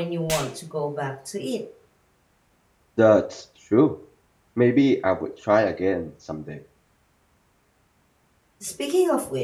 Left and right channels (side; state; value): both; identical; correlation 1.00